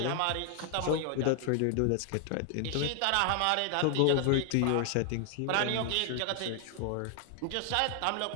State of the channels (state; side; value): different; both; correlation 0.00